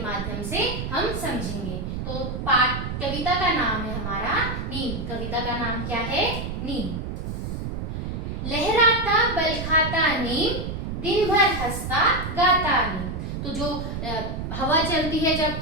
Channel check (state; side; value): noise; right; rumble, 4 dB below the sound